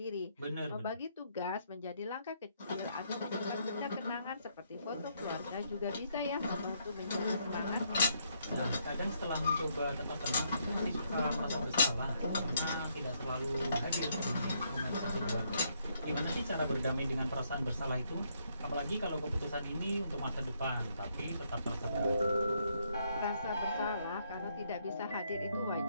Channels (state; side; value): inverted; both; correlation -0.73